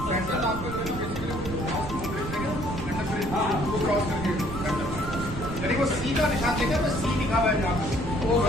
वो सी का निशान देखा, बस सी लिखा हुआ है जहाँ पे वो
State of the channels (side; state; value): right; noise; rumble, 8 dB below the sound